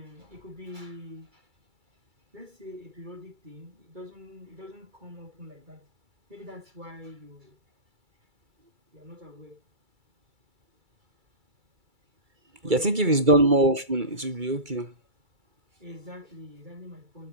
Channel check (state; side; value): late; left; 2.3 ms